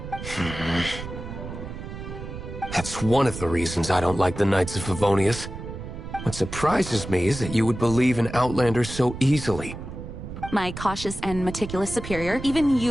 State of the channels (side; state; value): right; noise; rumble, 9 dB below the sound